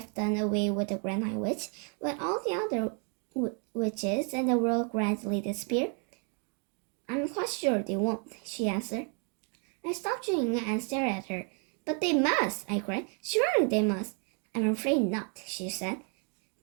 done away with the Grand High Witch, will all the other witches in the world gradually disappear? I'm quite sure they won't, she answered. I stopped chewing and stared at her. But they must, I cried. Surely they must. I'm afraid not, she said.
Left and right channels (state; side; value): quieter; left; 39.2 dB